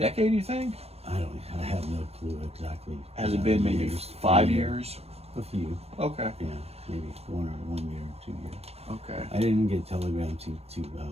you think? I have no clue exactly. Has it been maybe 5 years? A few. Okay. Yeah, maybe 1 year or 2 years. Okay. I didn't get Telegram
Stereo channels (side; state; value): left; late; 0.30 ms